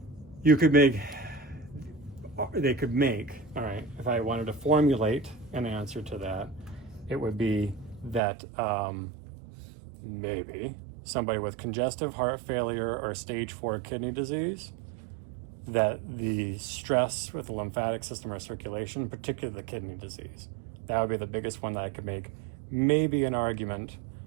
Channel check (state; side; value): drops out; left; at 8.2 s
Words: they could make, all right, if I wanted to formulate an answer to that, it would be that maybe somebody with congestive heart failure or stage 4 kidney disease, that the stress with the lymphatic system or circulation, particularly the kidney disease, that would be the biggest one that I could make maybe an argument